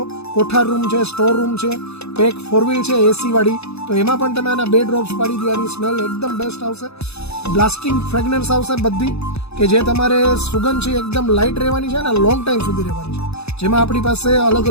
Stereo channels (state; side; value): late; right; 0.79 ms